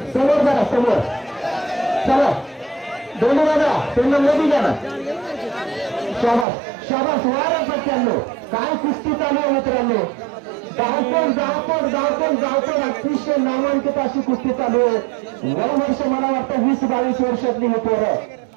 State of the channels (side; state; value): left; drops out; at 6.5 s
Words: समोर चला दोन्ही दादा त्यांना मध्ये द्या ना. शाबास वारा सत्त्याण्णव. काय कुस्ती चालू आहे मित्रांनो. धावपण अतिशय नामांकित अशी कुस्ती चालू आहे. वय वर्ष मला वाटतं 20-22 वर्षातली ही पोरं